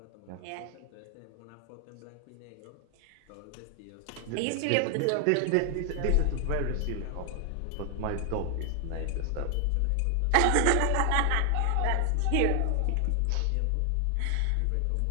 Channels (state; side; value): different; both; correlation 0.00